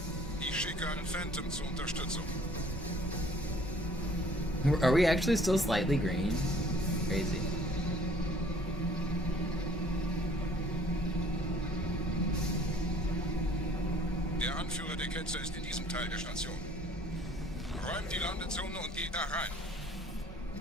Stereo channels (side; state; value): both; normal; correlation 0.55